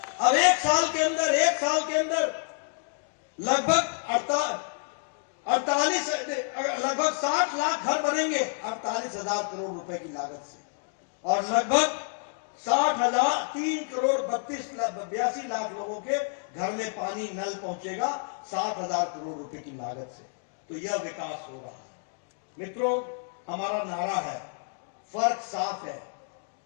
अब 1 साल के अंदर लगभग 60 लाख घर बनेंगे 48,000 करोड़ रुपए की लागत से। और लगभग 3,82 लाख लोगों के घर में पानी, नल पहुंचेगा 60,000 करोड़ रुपए की लागत से। तो यह विकास हो रहा है। मित्रों, हमारा नारा है, फर्क साफ है,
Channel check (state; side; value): silent; right; 59 dB below the other